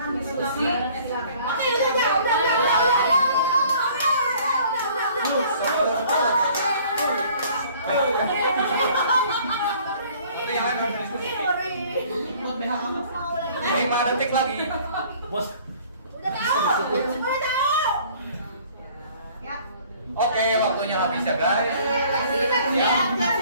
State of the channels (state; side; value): inverted; both; correlation -0.54